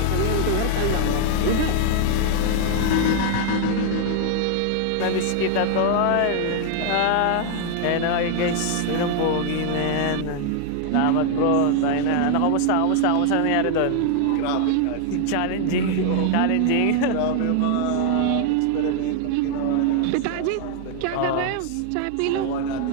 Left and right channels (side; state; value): both; different; correlation 0.00